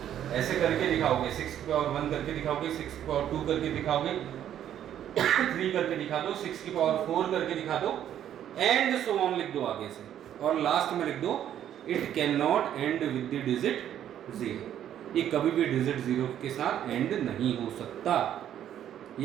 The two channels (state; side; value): quieter; left; 10.6 dB